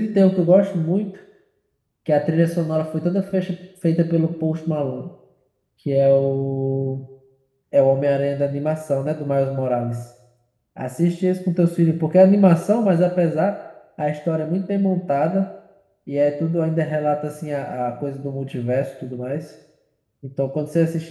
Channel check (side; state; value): both; identical; correlation 1.00